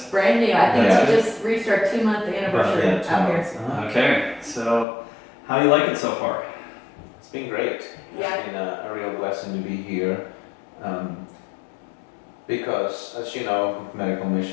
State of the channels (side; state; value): right; drops out; at 4.9 s